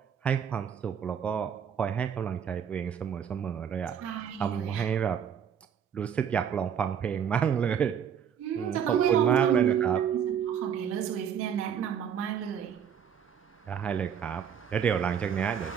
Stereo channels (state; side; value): quieter; left; 8.2 dB